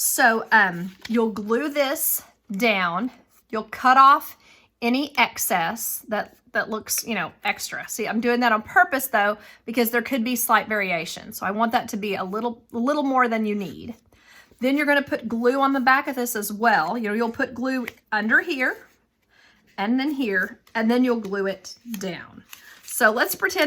you'll glue this down. You'll cut off any excess that looks, you know, extra. See, I'm doing that on purpose though, because there could be slight variation. So I want that to be a little more than you need. Then you're going to put glue on the back of this as well. You know, you'll put glue under here and then here, and then you'll glue it down. So let's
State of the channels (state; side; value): identical; both; correlation 1.00